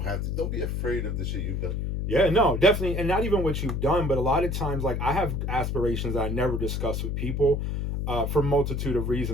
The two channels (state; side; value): noise; left; hum, 1 dB below the sound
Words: be afraid of the shit you've done. Yeah, no, definitely. And not even what you've done, but a lot of times, like, I have aspirations that I never discuss with people for a multitude of